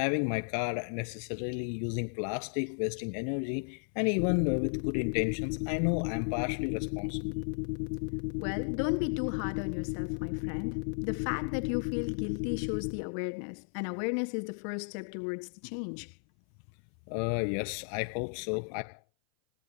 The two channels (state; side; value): silent; right; 55 dB below the other